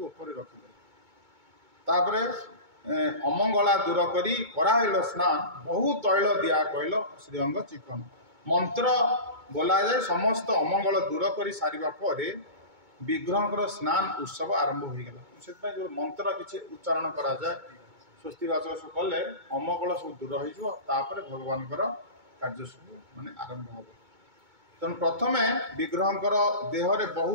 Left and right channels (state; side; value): late; left; 2.2 ms